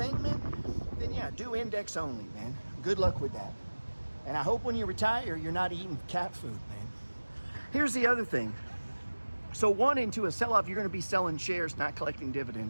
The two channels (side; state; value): both; inverted; correlation -1.00